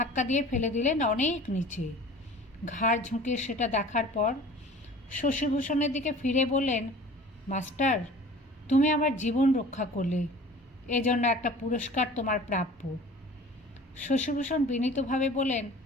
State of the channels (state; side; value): normal; both; correlation 0.44